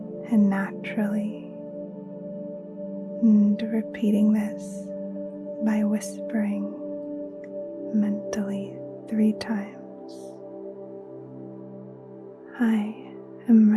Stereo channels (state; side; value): identical; both; correlation 1.00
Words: and naturally, and repeating this by whispering mentally 3 times. I am